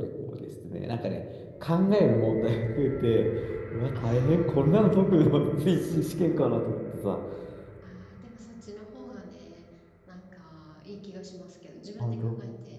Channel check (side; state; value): both; identical; correlation 1.00